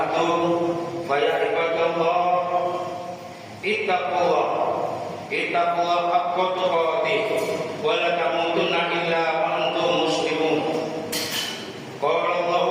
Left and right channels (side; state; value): both; identical; correlation 1.00